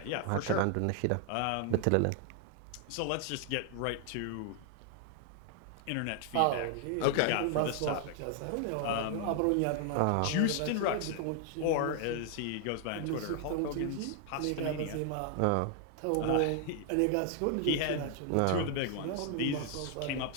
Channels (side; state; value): both; different; correlation 0.00